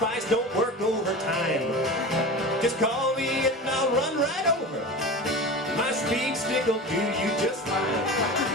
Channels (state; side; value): normal; both; correlation 0.30